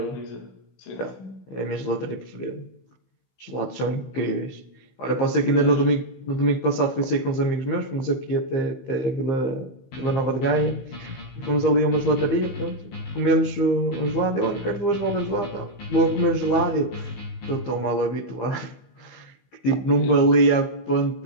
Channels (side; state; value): right; late; 16 ms